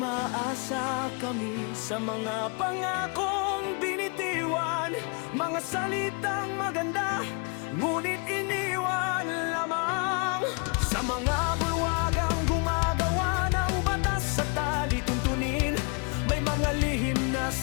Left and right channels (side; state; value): right; quieter; 35.3 dB